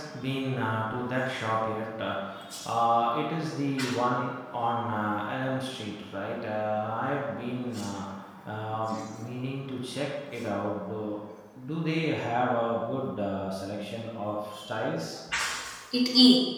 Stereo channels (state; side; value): identical; both; correlation 1.00